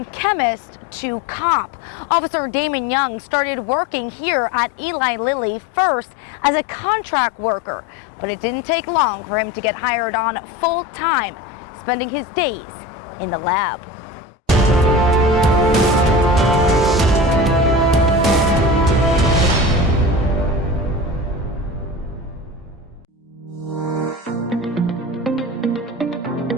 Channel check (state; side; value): normal; both; correlation 0.32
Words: chemist to cop, Officer Damon Young started working here at Eli Lilly first as a contract worker, but it didn't take long for him to get hired on full-time, spending his days in the lab.